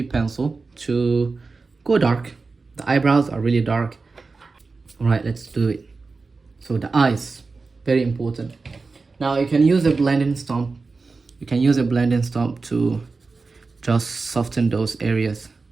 pencil to go dark. The eyebrows are really dark. All right, let's do it. So the eyes, very important. Now you can use a blending stump. You can use a blending stump to just soften those areas.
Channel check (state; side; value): quieter; left; 4.1 dB